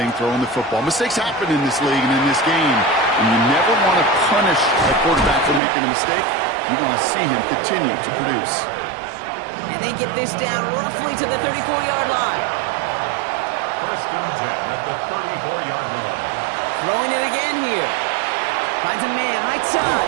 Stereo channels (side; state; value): left; drops out; at 5.6 s